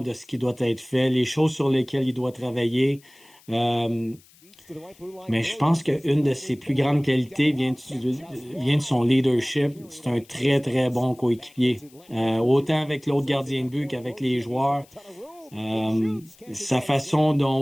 ce qui doit être fait, les choses sur lesquelles il doit travailler. Mais je pense qu'une de ses plus grandes qualités vient de son leadership. C'est un très, très bon coéquipier. Autant avec l'autre gardien de but qu'avec les joueurs. Sa façon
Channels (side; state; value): left; noise; hiss, 28 dB below the sound